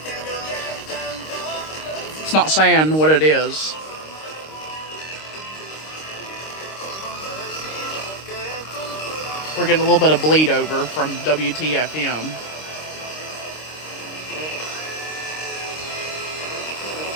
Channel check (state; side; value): late; right; 26 ms